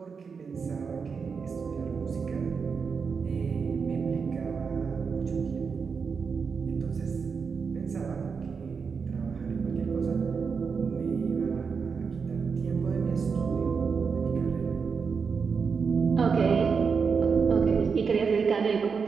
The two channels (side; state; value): left; quieter; 5.6 dB